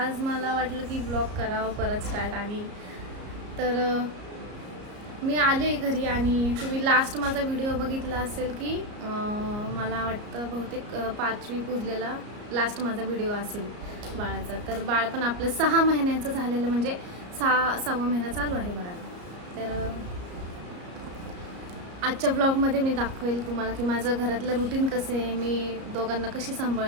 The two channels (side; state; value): left; late; 34 ms